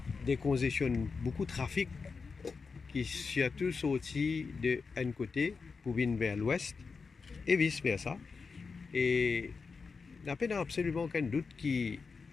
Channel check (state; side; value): quieter; right; 4.9 dB